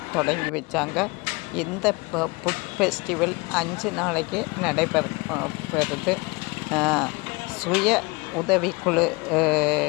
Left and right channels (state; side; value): quieter; right; 26.5 dB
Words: தொடங்கி வச்சாங்க. இந்த ஃபுட் ஃபெஸ்டிவல் 5 நாளைக்கு நடைபெறுது. சுய உதவிக்குழு